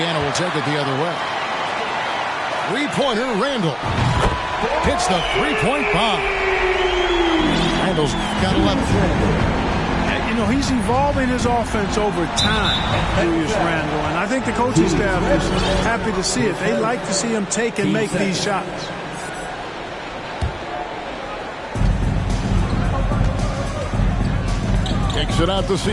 will take it the other way. Three-pointer, Randall. Hits the three-point bomb. Randall's got 11. You know, he's evolving his offense over time, Julius Randle, and I think the coaching staff is happy to see it. They like to see him take and make these shots. Kicks it out to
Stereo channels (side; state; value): both; identical; correlation 1.00